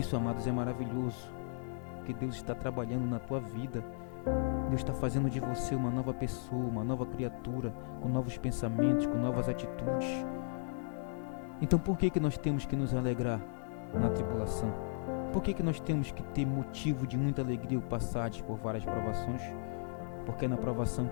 amados, é maravilhoso, porque Deus está trabalhando na tua vida. Deus está fazendo de você uma nova pessoa, uma nova criatura, com novos pensamentos, com novas atitudes. Então por que nós temos que nos alegrar na tribulação? Por que nós temos que ter motivo de muita alegria ao passar por várias provações? Porque é na provação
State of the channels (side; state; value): right; silent; 54 dB below the other